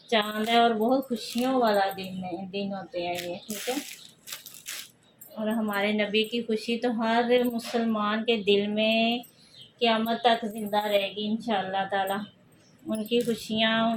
चाँद है और बहुत खुशियों वाला दिन होते हैं ये, ठीक है। और हमारे नबी की खुशी तो हर मुसलमान के दिल में क़यामत तक ज़िंदा रहेगी इंशाअल्लाह ताला। उनकी खुशियाँ,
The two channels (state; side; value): identical; both; correlation 1.00